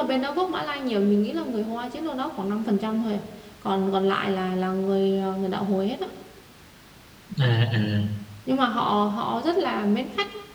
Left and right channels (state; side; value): identical; both; correlation 1.00